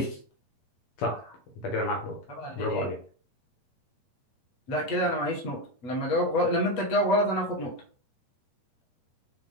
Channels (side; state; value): right; late; 8.5 ms